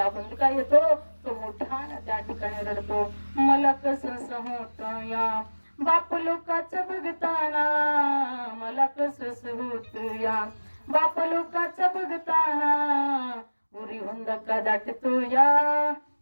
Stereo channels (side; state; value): both; inverted; correlation -1.00